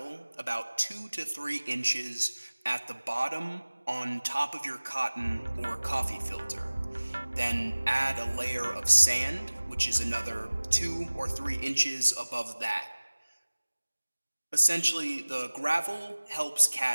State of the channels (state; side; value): inverted; both; correlation -1.00